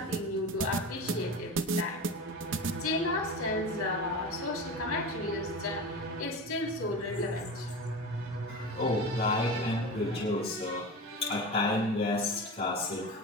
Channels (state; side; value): normal; both; correlation 0.28